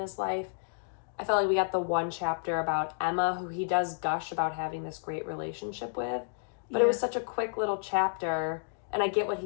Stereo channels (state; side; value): silent; right; digital silence